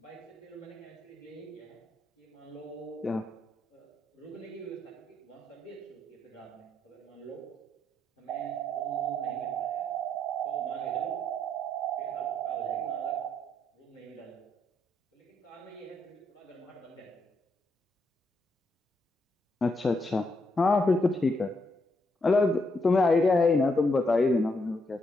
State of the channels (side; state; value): both; normal; correlation 0.77